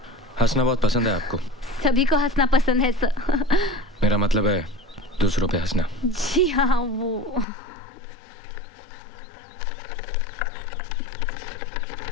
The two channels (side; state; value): right; drops out; at 7.5 s